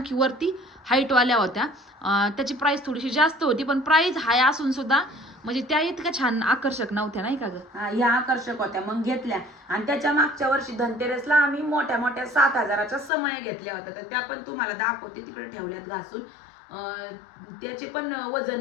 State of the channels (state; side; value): drops out; right; at 13.1 s